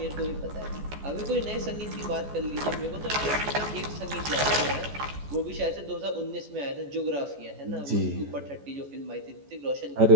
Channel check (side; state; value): left; late; 14 ms